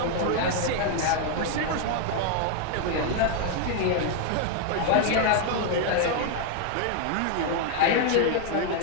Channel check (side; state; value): both; different; correlation 0.00